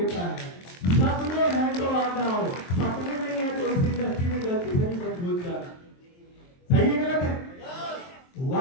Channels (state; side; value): late; right; 23 ms